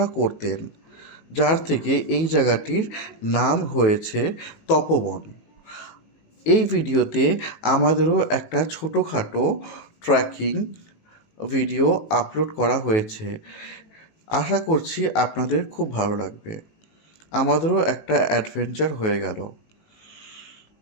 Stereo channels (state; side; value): late; right; 19 ms